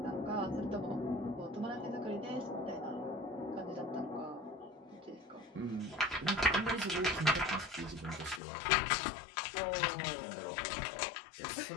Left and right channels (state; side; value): drops out; right; at 8.4 s